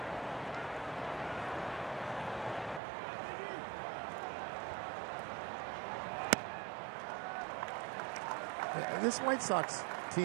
This White Sox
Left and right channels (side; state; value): left; drops out; at 2.8 s